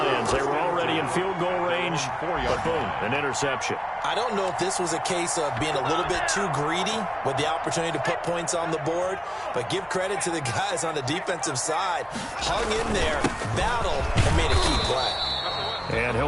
They were already in field goal range, but boom, an interception. I don't know if this was a case of being a little bit too greedy with the opportunity to put points on the board, but give credit to the guys on the defensive side. Hung in there, battled, and made a key play. And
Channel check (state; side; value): identical; both; correlation 1.00